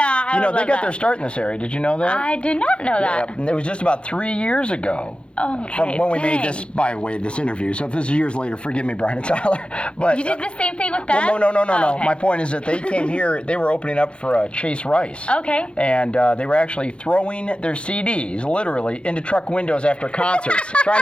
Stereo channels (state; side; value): late; right; 0.057 ms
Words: they got their start in this area. Did you know that? I did not know that. Yeah, it was just about 3 years ago Okay. From when we made dang. this, by the way, this interview. So if this is years later, forgive me, Brian and Tyler. But You did the same thing with that? well, no. Oh, okay. My point is that they came here. They were opening up for Chase Rice. Okay. And they were actually throwing their CDs, literally, into truck windows after concerts, trying